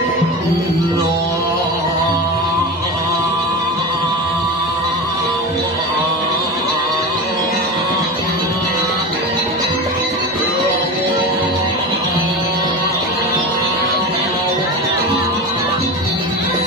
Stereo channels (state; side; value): normal; both; correlation 0.26